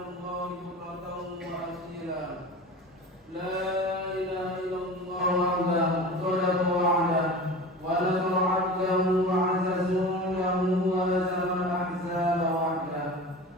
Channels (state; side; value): normal; both; correlation 0.34